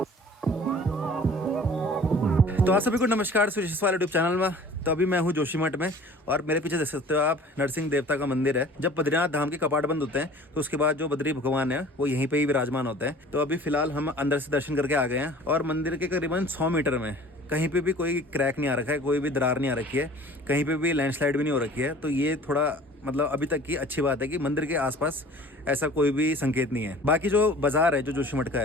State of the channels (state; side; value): normal; both; correlation 0.46